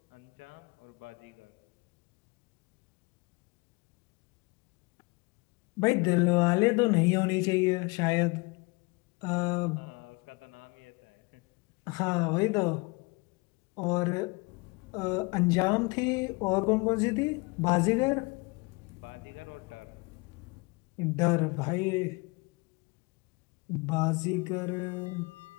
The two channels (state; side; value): quieter; right; 27.1 dB